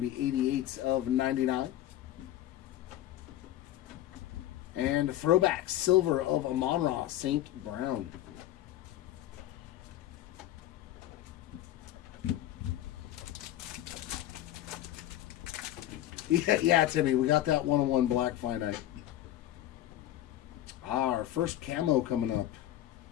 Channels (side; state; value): right; quieter; 13.4 dB